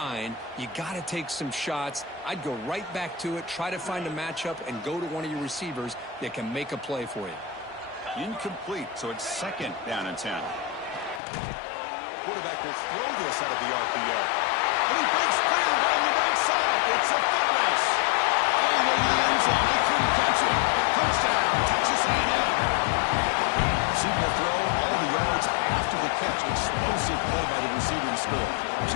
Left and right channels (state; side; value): drops out; right; at 11.2 s